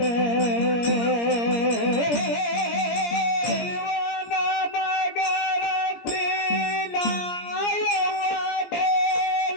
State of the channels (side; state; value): right; late; 17 ms